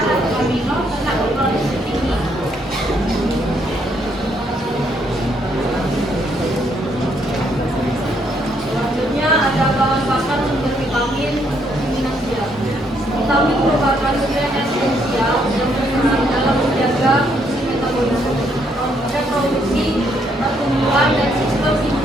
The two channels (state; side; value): normal; both; correlation 0.72